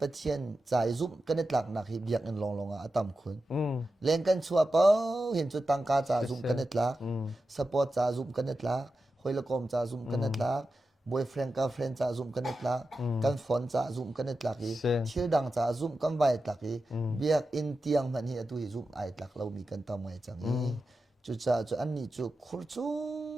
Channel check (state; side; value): normal; both; correlation 0.91